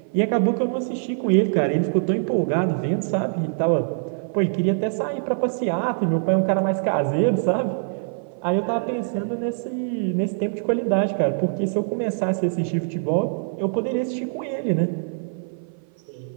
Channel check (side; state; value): left; silent; 55 dB below the other